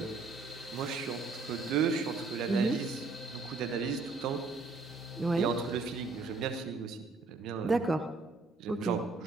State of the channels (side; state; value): left; quieter; 3.9 dB